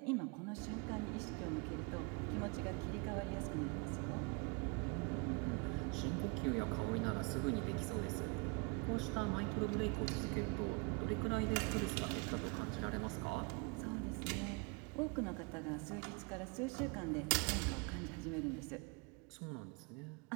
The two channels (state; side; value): quieter; left; 31.6 dB